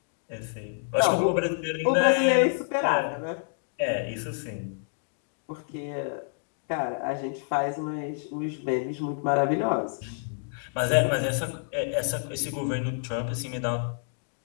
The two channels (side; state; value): right; silent; digital silence